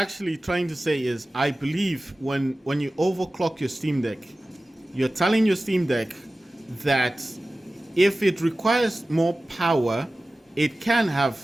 trying to say is, I believe when you overclock your Steam Deck, you're telling your Steam Deck that if it requires more power, it can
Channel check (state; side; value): normal; both; correlation 0.96